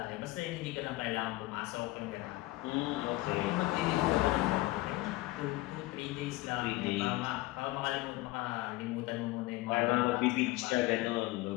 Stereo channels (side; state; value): right; quieter; 19.3 dB